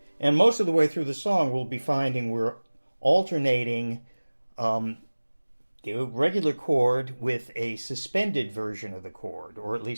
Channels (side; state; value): both; inverted; correlation -1.00